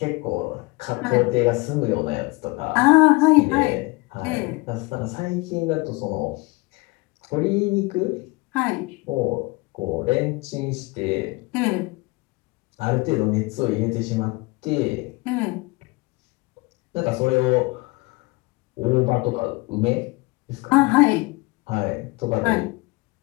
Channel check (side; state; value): right; quieter; 24.8 dB